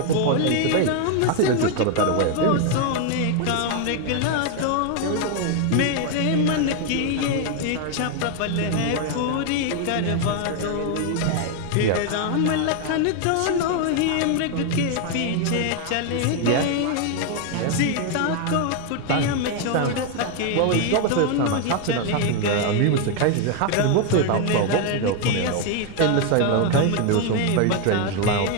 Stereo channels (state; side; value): different; both; correlation 0.01